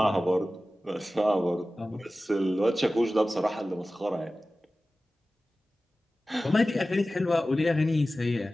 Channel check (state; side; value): normal; both; correlation 0.96